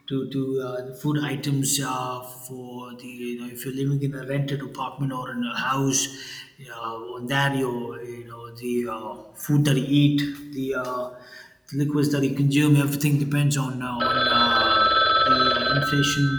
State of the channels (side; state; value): both; identical; correlation 1.00